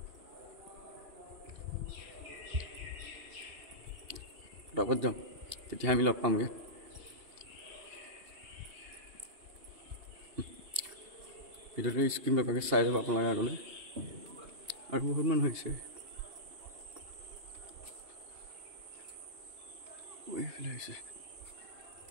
ফটাফট যাওঁ, তেতিয়া আমি লগ পামগৈ। ভিডিঅ'টো স্ক্ৰীন নকৰাকৈ চাই যাব আপোনালোকে আগলৈ। আৰু বহুত মানুহ আহিছে। এইফালে আহিছে,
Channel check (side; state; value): left; late; 2.8 ms